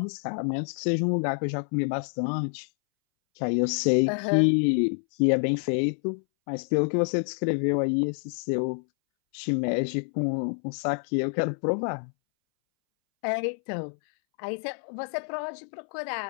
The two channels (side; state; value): right; silent; 60 dB below the other